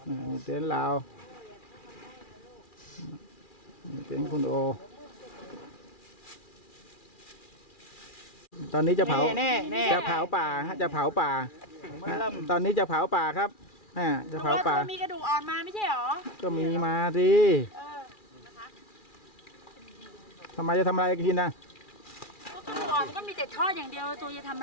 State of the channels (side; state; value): right; late; 2.4 ms